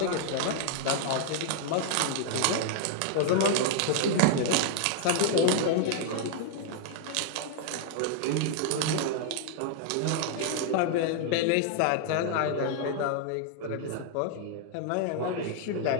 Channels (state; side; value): different; both; correlation 0.00